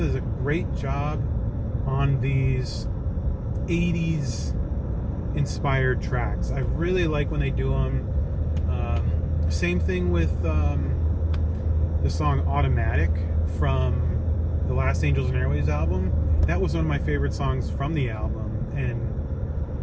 a great job on these 80s inspired tracks. I really like when they do them. Same thing with the song Automatic from the Last Angels and Airwaves album. That was one of my favorite songs from the album, and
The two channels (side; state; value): both; identical; correlation 1.00